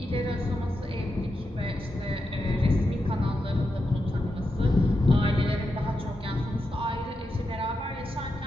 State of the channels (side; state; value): both; normal; correlation 0.87